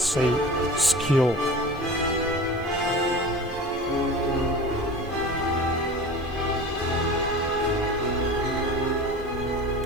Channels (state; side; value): normal; both; correlation 0.36